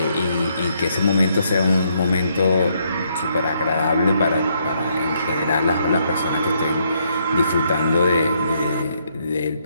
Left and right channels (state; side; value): inverted; both; correlation -0.73